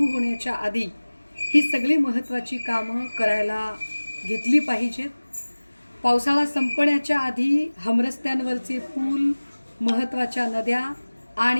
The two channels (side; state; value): both; inverted; correlation -1.00